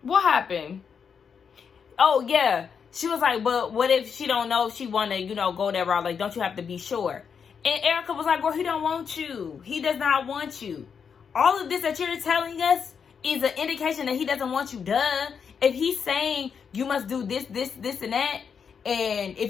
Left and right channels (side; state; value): right; quieter; 6.6 dB